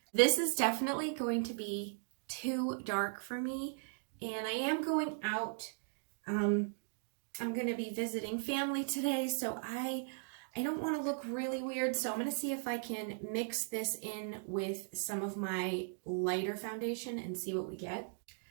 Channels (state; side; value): silent; left; digital silence